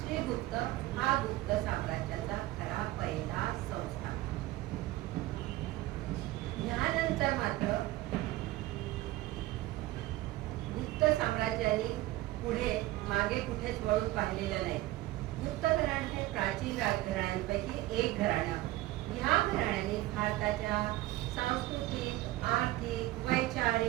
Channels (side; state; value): left; quieter; 17.1 dB